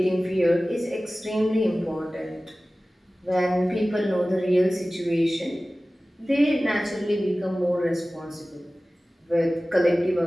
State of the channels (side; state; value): both; normal; correlation 0.97